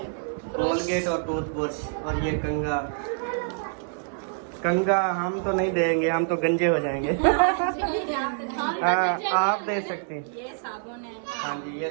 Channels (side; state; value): left; silent; 56 dB below the other